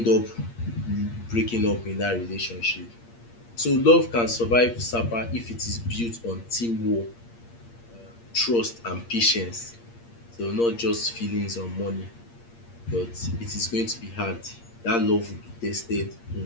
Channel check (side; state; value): right; late; 8.6 ms